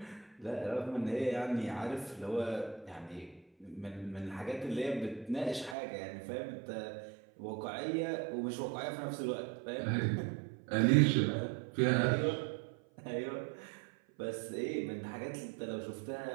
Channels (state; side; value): drops out; left; at 5.8 s